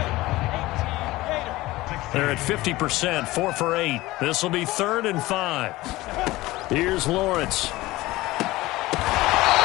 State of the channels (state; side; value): quieter; right; 18.7 dB